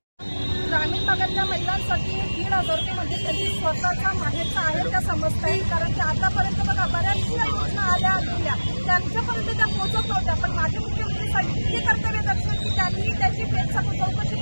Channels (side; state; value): both; inverted; correlation -1.00